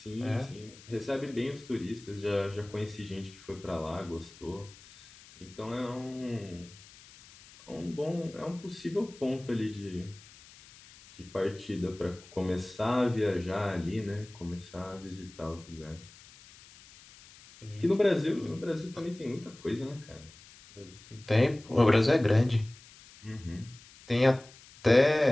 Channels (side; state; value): left; noise; hiss, 22 dB below the sound